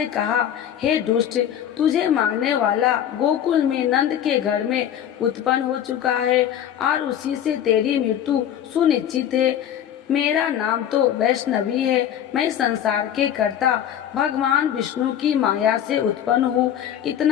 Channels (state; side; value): quieter; right; 10.1 dB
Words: कहा, हे दुष्ट, तुझे मारने वाला गोकुल में नंद के घर में उत्पन्न हो चुका है और उसी से तेरी मृत्यु सुनिश्चित है। मेरा नाम तो वैष्णवी है, मैं संसार के कर्ता भगवान विष्णु की माया से उत्पन्न हूँ।